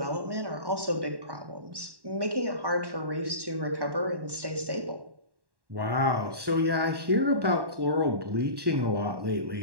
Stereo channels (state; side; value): late; left; 1.1 ms